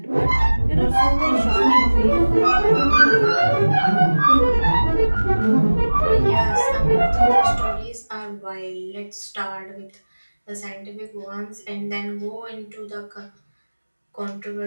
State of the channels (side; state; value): both; inverted; correlation -1.00